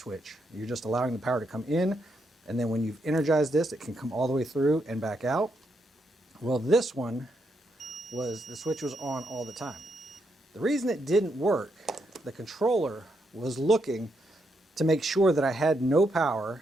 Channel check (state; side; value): normal; both; correlation 0.80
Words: You're just allowing the power to come in, and then when you've energized this, it can come all the way through and back out. Well, this one was, the switch was on all the time. The reason it didn't work, the controller was looking to make sure that I had no